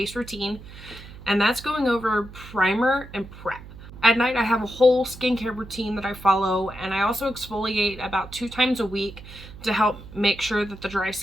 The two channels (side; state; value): right; noise; hum, 16 dB below the sound